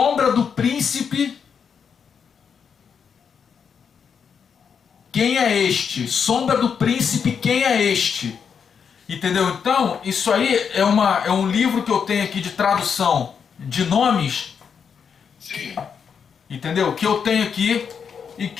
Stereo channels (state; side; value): quieter; right; 6.8 dB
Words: do príncipe. Quem é este? Sombra do príncipe, quem é este? Entendeu? Então, isso aí é um livro que eu tenho aqui de tradução de nomes. Sim. Entendeu? Que eu tenho aqui e